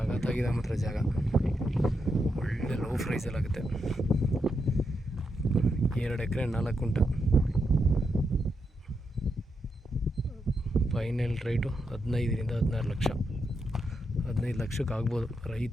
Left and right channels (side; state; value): both; normal; correlation 0.83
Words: ಮಾತ್ರ ಜಾಗ. ಒಳ್ಳೆ ಲೋ ಪ್ರೈಸಲ್ಲಾಗುತ್ತೆ. 2 ಎಕರೆ 4 ಗುಂಟ. ಫೈನಲ್ ರೇಟು 15ರಿಂದ 16 ಲಕ್ಷ. 15 ಲಕ್ಷಕ್ಕೆ ಆಗ್ಬೋದು.